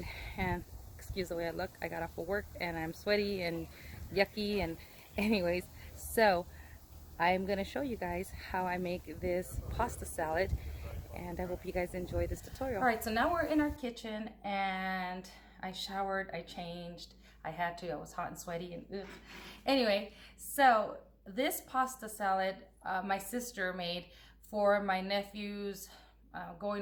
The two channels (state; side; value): identical; both; correlation 1.00